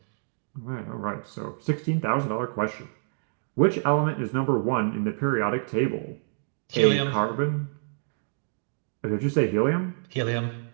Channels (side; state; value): left; silent; digital silence